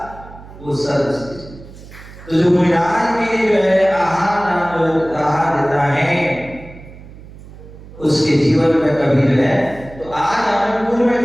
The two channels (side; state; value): right; noise; hum, 18 dB below the sound